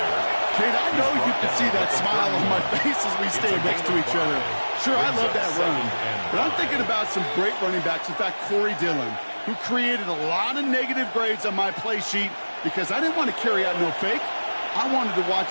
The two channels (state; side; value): inverted; both; correlation -1.00